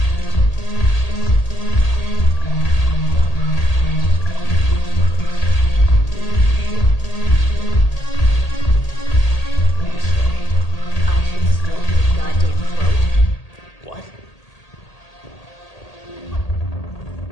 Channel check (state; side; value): late; right; 1.8 ms